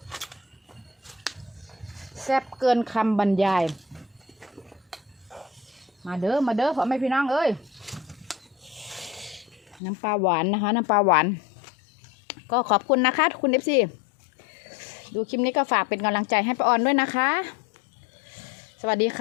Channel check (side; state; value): right; drops out; at 9.8 s